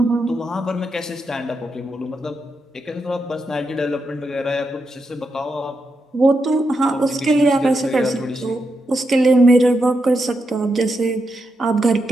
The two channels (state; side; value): normal; both; correlation 0.84